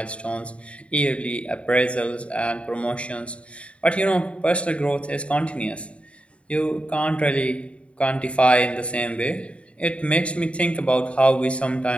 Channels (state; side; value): late; right; 0.061 ms